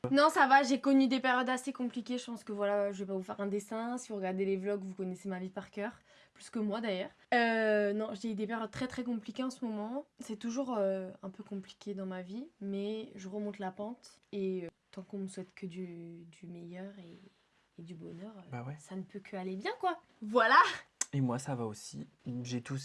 Non ça va, j'ai connu des périodes assez compliquées. Je pense que voilà, je vais pas vous faire un dessin. Si vous regardez les vlogs, vous connaissez ma vie par cœur. Plus que moi d'ailleurs. Non, j'ai eu des périodes très très compliquées en ce moment. C'est toujours un peu compliqué dans ma vie. Mais je remonte la pente. Et tant qu'on me souhaite que du meilleur et du bonheur, Bah ouais. ça ne peut que aller bien quoi. Voilà. Et moi, ça va aussi. J'ai tout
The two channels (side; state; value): both; identical; correlation 1.00